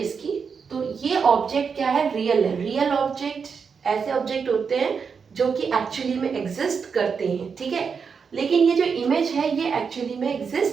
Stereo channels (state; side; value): quieter; left; 5.9 dB